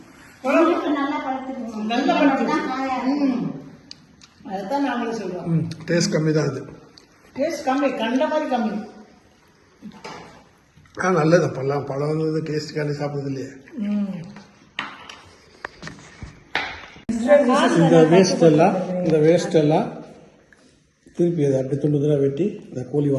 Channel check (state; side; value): identical; both; correlation 1.00